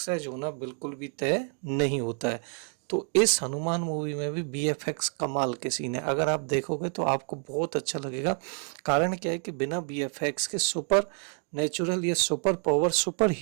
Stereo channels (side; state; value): left; quieter; 38.8 dB